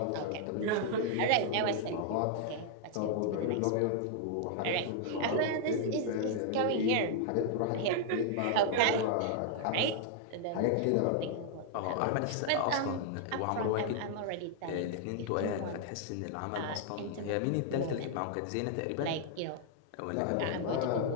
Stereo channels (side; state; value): both; different; correlation -0.01